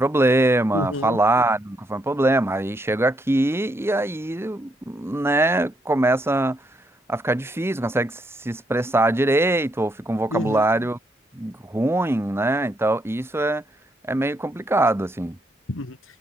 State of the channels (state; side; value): normal; both; correlation 0.76